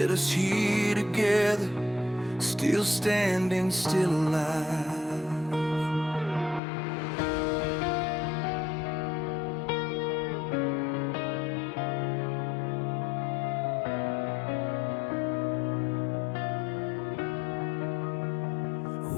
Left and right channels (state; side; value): drops out; right; at 6.6 s